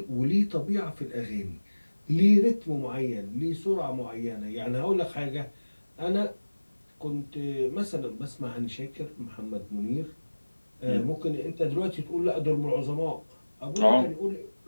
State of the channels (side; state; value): both; inverted; correlation -1.00